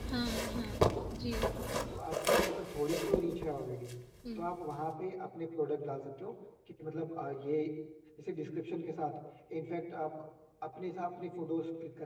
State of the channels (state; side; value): identical; both; correlation 1.00